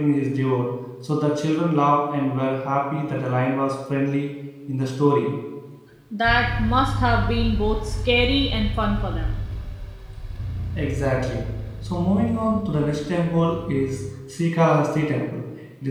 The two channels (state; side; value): identical; both; correlation 1.00